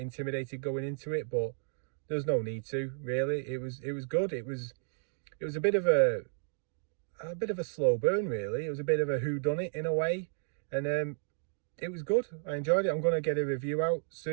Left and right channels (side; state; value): left; silent; digital silence